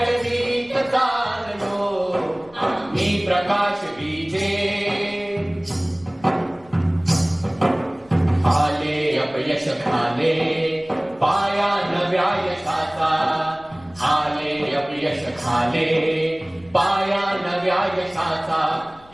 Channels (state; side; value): noise; left; rumble, 26 dB below the sound